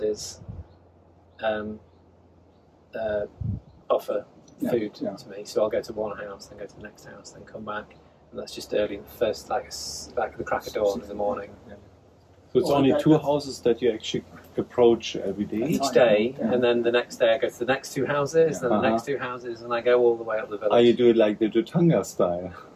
offer food to me. So I'll go to one house, then go to the next house, then come back, and that's just early in the first, like the crack of dawn in the morning. Yeah. So it's only 2 houses that you actually approach every day? Each day, and then the next day I go to the next 2 houses, then the next 2 houses, and I go all the way up the village. Oh, you do it like the Dhutanga style?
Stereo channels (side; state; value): both; identical; correlation 1.00